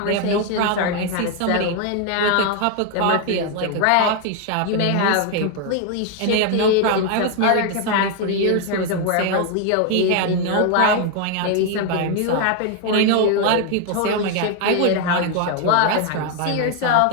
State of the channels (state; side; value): different; both; correlation 0.00